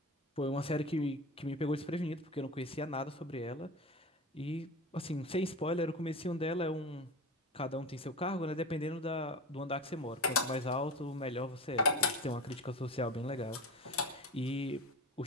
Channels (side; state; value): both; normal; correlation 0.28